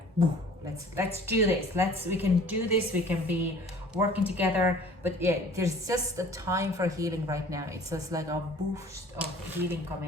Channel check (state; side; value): normal; both; correlation 0.49